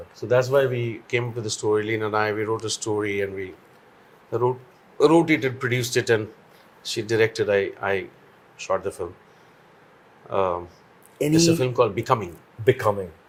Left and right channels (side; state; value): both; identical; correlation 1.00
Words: So that's why we came up with the story. Lena and I, we wrote a story and we wrote it and produced it, and she directed. I shot the film. It's a film called Becoming. Becoming.